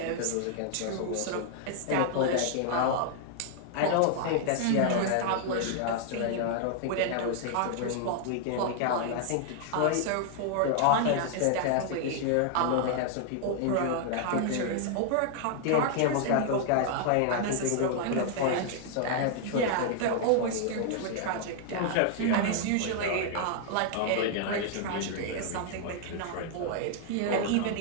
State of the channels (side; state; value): both; different; correlation 0.00